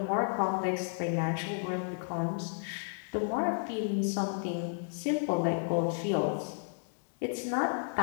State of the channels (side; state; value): right; silent; digital silence